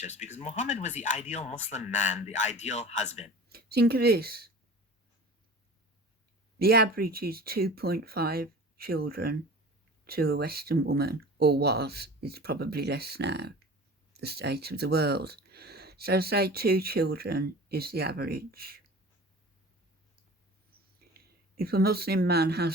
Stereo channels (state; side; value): normal; both; correlation 0.39